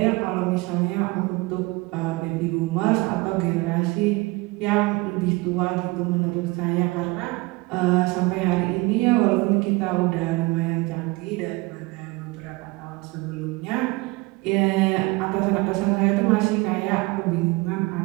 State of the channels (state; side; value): quieter; left; 23.7 dB